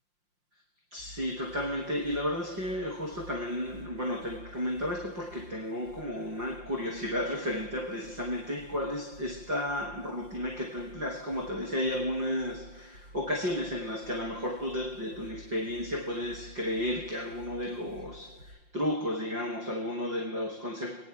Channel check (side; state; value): left; late; 5.7 ms